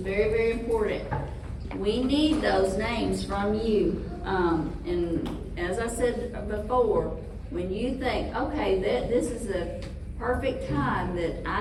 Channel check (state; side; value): identical; both; correlation 1.00